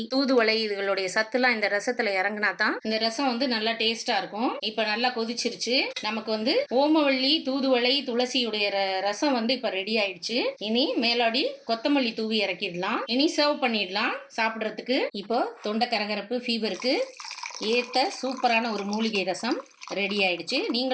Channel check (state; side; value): identical; both; correlation 1.00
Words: தூதுவளை இதுகளுடைய சத்துலாம் இந்த ரசத்துல இறங்கினா தான் இந்த ரசம் வந்து நல்லா டேஸ்டா இருக்கும். இப்போ நல்லா கொதிச்சிருச்சு. நமக்கு வந்து ஓமவல்லி, தூதுவளை, துளசியுடைய ரசம் வந்து இப்போ ரெடி ஆயிடுச்சு. இனி மேலாடி கொத்தமல்லி தூவி இறக்கிடலாம். இனி சர்வ் பண்ணிடலாம் சாப்பிட்றதுக்கு. இப்போ தொண்டை கரகரப்பு, ஃபீவருக்கு ஏற்ற சூப்பரான ஒரு மூலிகை ரசம் ரெடி ஆயிடுச்சு.